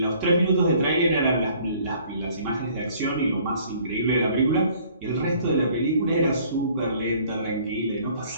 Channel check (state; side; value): inverted; both; correlation -0.57